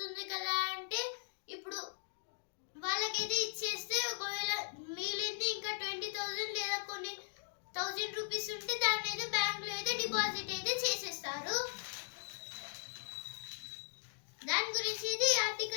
కదా అంటే ఇప్పుడు వాళ్ళకైతే ఇచ్చేస్తే ఒకవేళ మిగిలింది ఇంకా 20,000 లేదా కొన్ని 1000 రూపీస్ ఉంటే దాన్ని అయితే బ్యాంకులో అయితే డిపాజిట్ అయితే చేసేస్తారు. దాని గురించి అయితే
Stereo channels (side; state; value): right; silent; digital silence